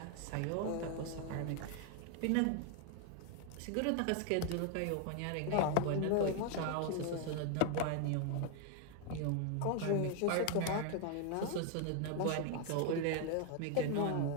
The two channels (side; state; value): both; different; correlation 0.00